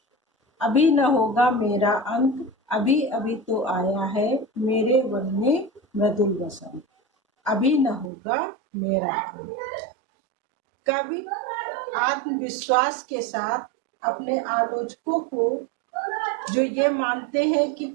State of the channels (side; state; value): left; drops out; at 8.1 s